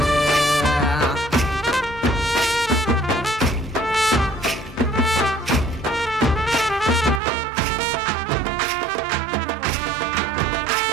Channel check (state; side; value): drops out; left; at 7.2 s